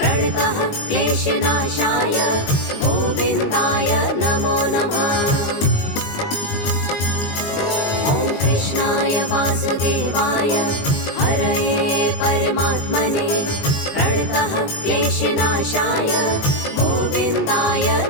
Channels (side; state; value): right; late; 19 ms